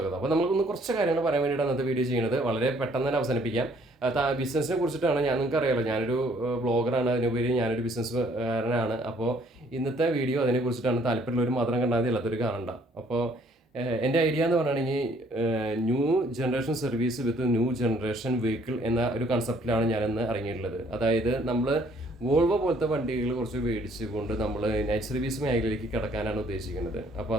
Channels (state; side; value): normal; both; correlation 0.62